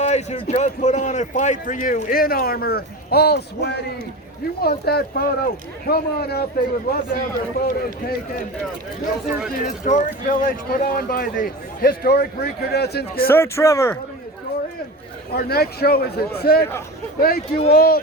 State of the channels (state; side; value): normal; both; correlation 0.30